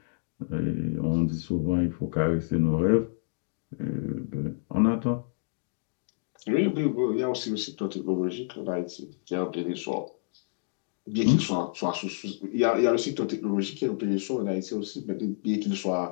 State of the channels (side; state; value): right; silent; digital silence